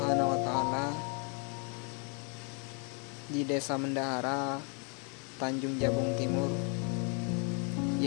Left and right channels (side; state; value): right; quieter; 37.2 dB